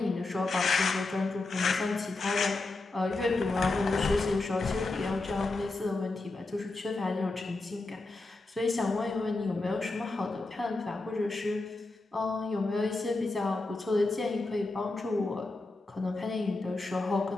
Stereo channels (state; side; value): quieter; right; 3.2 dB